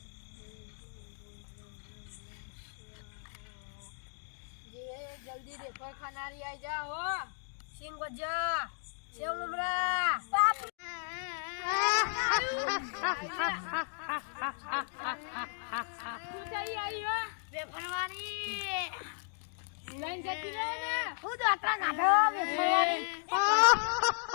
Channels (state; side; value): silent; right; digital silence